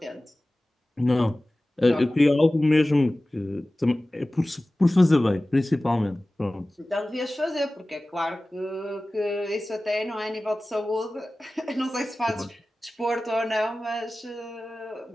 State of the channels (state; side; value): normal; both; correlation 0.97